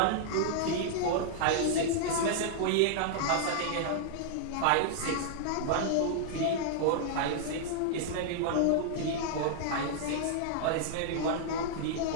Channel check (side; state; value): both; different; correlation -0.01